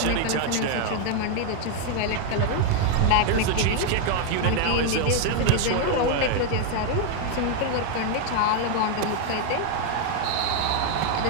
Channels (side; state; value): both; different; correlation 0.00